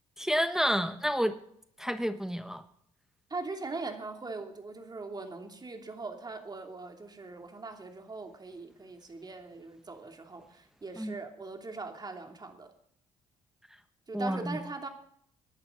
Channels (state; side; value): normal; both; correlation 0.87